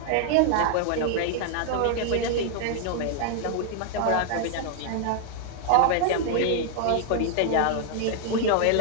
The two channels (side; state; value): both; different; correlation 0.00